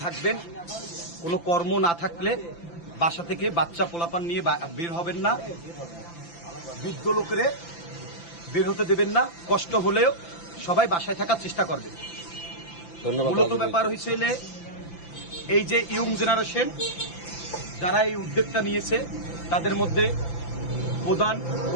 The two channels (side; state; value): right; late; 5.9 ms